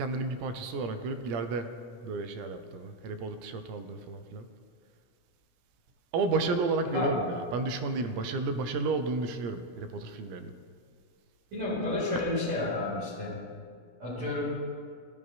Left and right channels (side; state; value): left; late; 17 ms